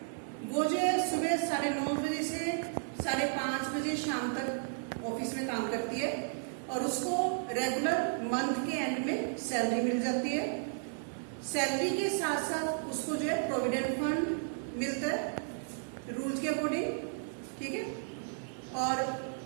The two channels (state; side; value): silent; left; digital silence